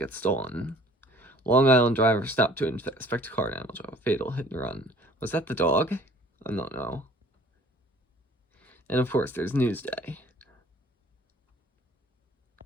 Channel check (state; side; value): normal; both; correlation 0.53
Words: stolen. Long Island driver stopped to inspect car damage of a fatal hit and run. Was that the dog? I don't know. And of course, there's Newsday.